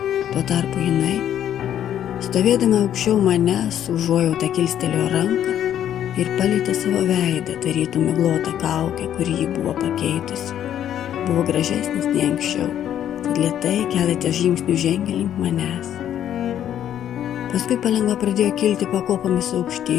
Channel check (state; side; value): quieter; right; 10.5 dB